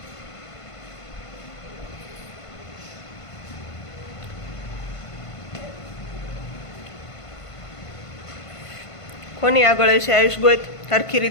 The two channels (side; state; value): right; late; 1.5 ms